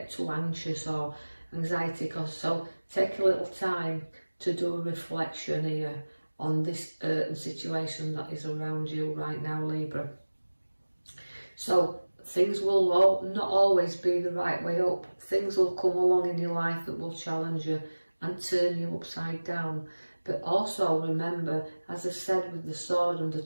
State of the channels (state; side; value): inverted; both; correlation -1.00